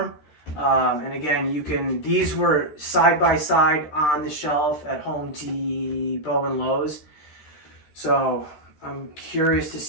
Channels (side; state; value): right; late; 13 ms